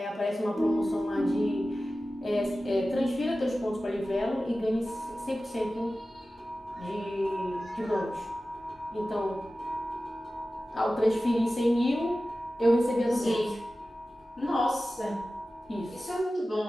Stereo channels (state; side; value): normal; both; correlation 0.95